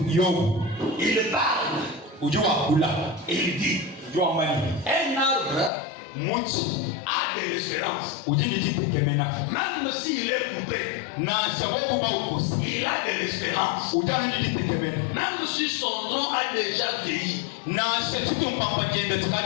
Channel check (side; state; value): right; drops out; at 5.7 s